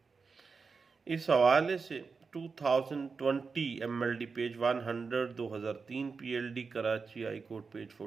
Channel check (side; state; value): left; quieter; 4.9 dB